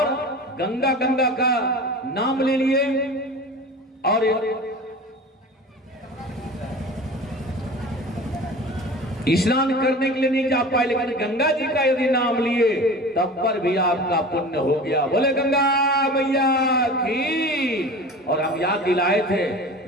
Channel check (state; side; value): normal; both; correlation 0.36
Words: गंगा गंगा का नाम ले लिए और स्नान करने के लिए नहीं जा पाए, लेकिन गंगा जी का यदि नाम लिए तब पर भी आपका पुण्य हो गया। बोले गंगा मैया की। और हम याद दिलाए थे